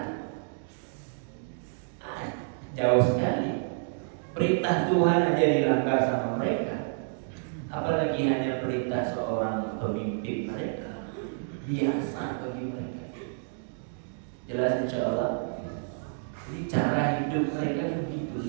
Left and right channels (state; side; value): silent; left; digital silence